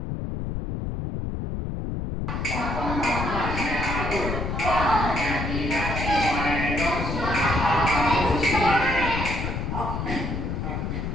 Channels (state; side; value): noise; left; rumble, 3 dB below the sound